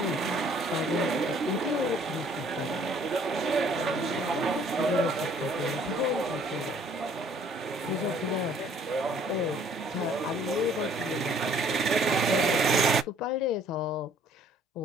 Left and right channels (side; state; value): both; normal; correlation 0.59